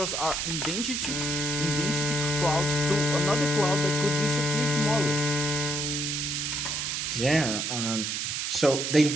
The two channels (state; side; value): noise; right; hiss, 1 dB below the sound